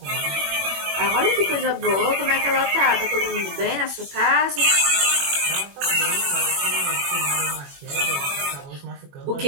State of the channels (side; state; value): left; late; 21 ms